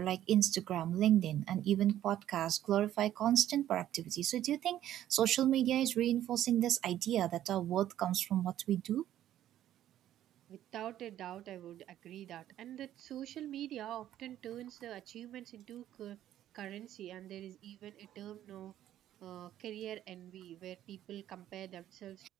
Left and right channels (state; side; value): quieter; left; 12.2 dB